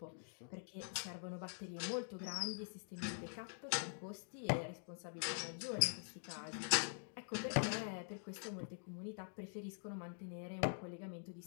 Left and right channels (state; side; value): silent; right; digital silence